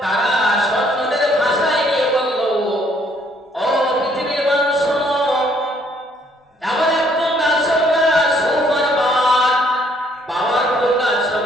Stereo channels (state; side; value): normal; both; correlation 0.65